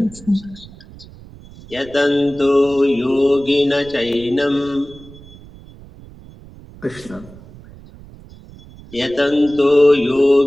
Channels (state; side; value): noise; right; rumble, 20 dB below the sound